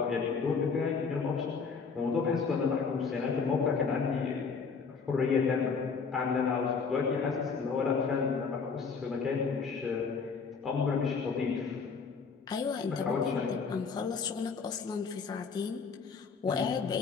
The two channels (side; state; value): right; quieter; 5.3 dB